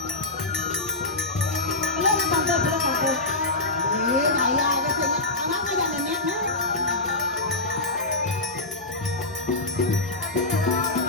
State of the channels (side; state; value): right; quieter; 3.1 dB